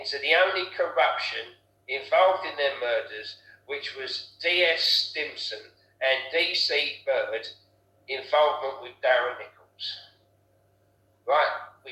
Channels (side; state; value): both; identical; correlation 1.00